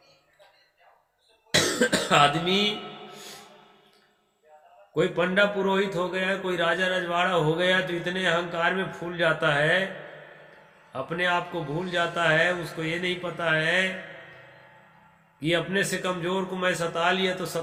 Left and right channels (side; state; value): both; identical; correlation 1.00